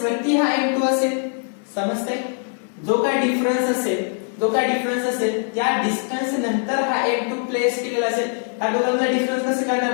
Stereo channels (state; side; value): silent; right; 55 dB below the other